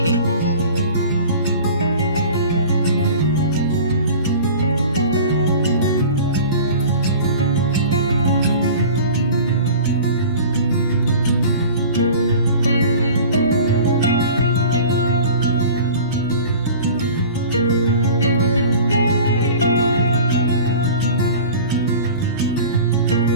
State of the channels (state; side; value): inverted; both; correlation -0.41